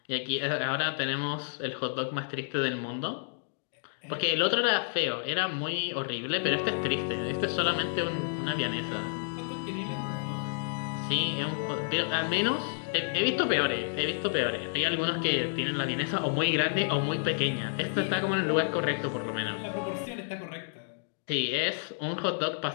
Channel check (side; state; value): right; silent; digital silence